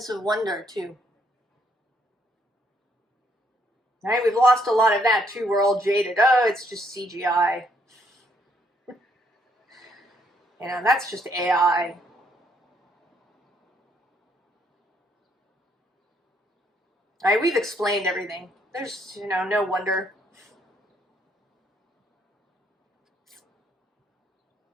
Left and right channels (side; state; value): both; normal; correlation 0.70